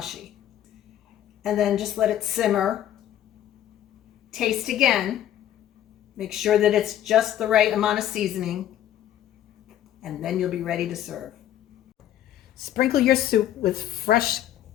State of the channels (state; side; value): quieter; right; 11.6 dB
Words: And then just let it simmer. Taste again. Make sure that it's just the right amount of seasoning, and then you'll be ready to serve. Sprinkle your soup with fresh